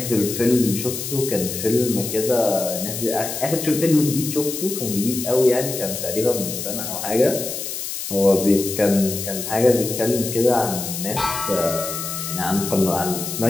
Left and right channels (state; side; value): noise; left; hiss, 6 dB below the sound